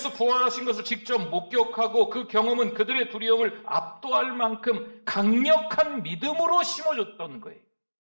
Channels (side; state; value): both; inverted; correlation -1.00